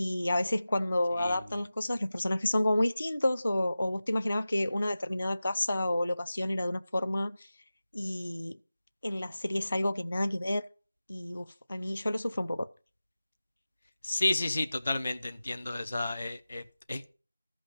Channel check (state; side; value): inverted; both; correlation -0.95